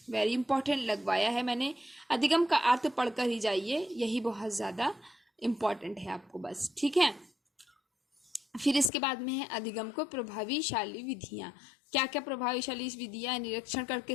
वेरी इंपॉर्टेंट लगवाया है मैंने। अधिगम का अर्थ पढ़कर ही जाइए, यही बहुत ज़्यादा इम्पॉर्टेंट है आपको बस। ठीक है, फिर इसके बाद में है अधिगम को प्रभावशाली विधियां। क्या क्या प्रभावशाली विधियां, निरीक्षण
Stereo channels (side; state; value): right; drops out; at 8.9 s